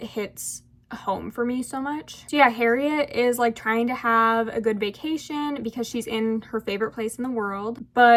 hits home for me so much. So yeah, Harriet is like trying to have a good vacation because she's in her favorite place in the world,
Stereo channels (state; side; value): identical; both; correlation 1.00